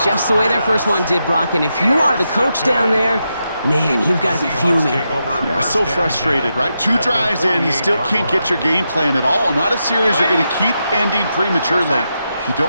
just the way their first one did, Brock. And if you are the coach down there, man, you've got to be fuming. Yeah, so frustrated, right? 2 drives in, you still can't get your game plan at all. Not a series you're going to keep ending prematurely. You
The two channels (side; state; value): both; inverted; correlation -0.85